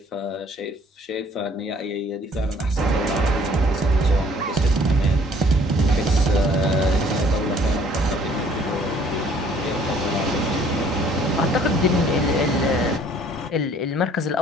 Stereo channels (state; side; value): normal; both; correlation 0.57